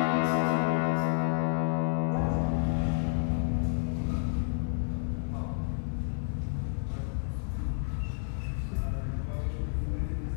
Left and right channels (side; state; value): right; silent; 58 dB below the other